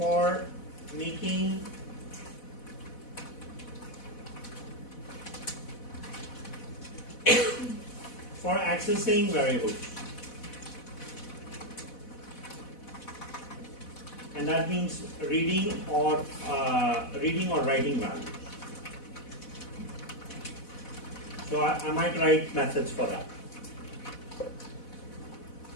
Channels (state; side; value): late; right; 4.1 ms